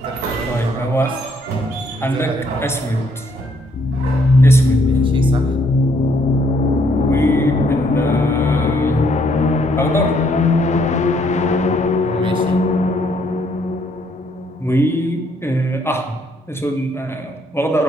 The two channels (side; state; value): both; normal; correlation 0.69